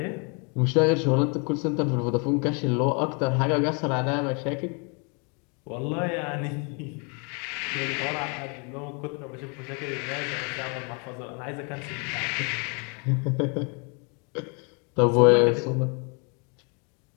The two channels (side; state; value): right; quieter; 34.9 dB